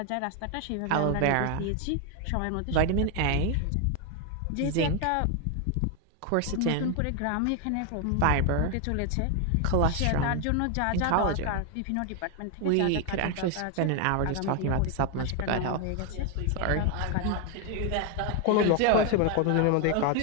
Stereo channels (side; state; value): both; different; correlation 0.01